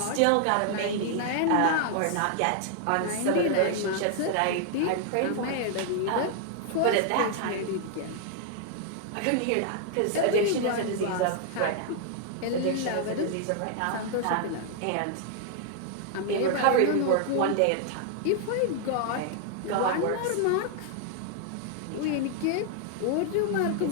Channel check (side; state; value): both; different; correlation 0.00